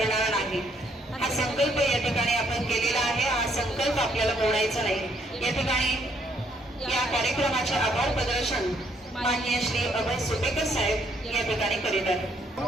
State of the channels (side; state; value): both; normal; correlation 0.70